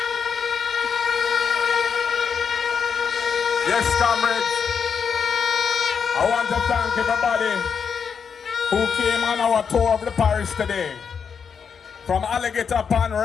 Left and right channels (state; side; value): quieter; right; 6.5 dB